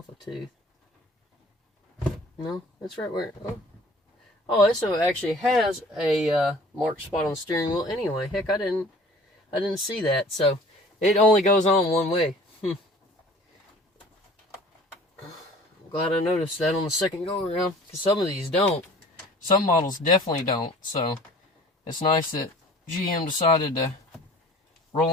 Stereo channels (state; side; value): normal; both; correlation 0.48